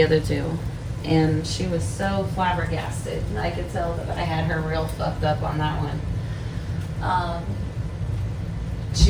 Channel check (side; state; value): both; identical; correlation 1.00